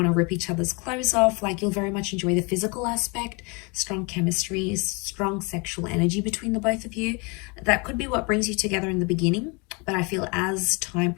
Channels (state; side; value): quieter; right; 30.3 dB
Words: to rip each other's clothes off. Like you'll very much enjoy the physical aspect, strong chemistry, strong sexual energy between the both of you. That could be what brings you together in the beginning. But I feel as time